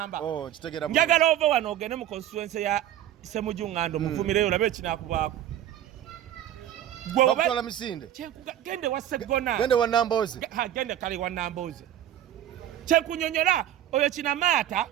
njagala ova wano ogende mu constituency ya Ssemujjuŋŋando muvumireyo olabe ekinaakubaako bakutwala misinde gende wa Segona gende wa Nambooze gende kale wa Nambooze kyenkunyonyola oyo kinamaata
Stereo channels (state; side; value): quieter; left; 11.8 dB